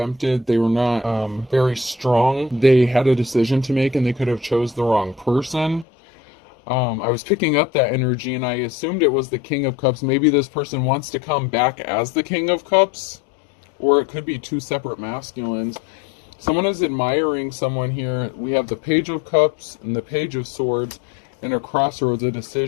they were not very strong. They had a decision to make and they could have chose the wrong person. I was picking up that energy and I assumed it was the King of Cups. Maybe this person wants to come back as the King of Cups, or it could be two separate masculines. Someone is admiring someone here. We have the Page of Cups and the Page of Swords, and a crossroads, a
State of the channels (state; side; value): drops out; right; at 5.9 s